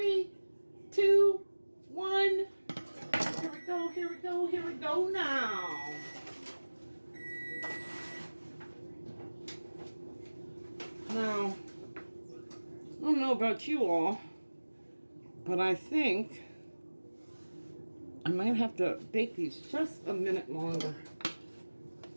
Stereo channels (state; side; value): inverted; both; correlation -1.00